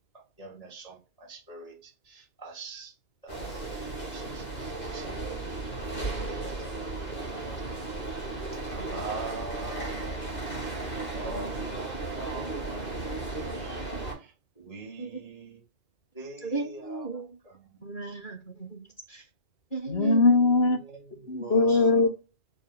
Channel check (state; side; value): late; right; 2.5 ms